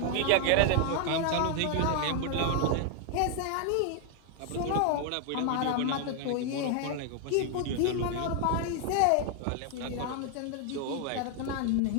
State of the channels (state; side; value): different; both; correlation 0.00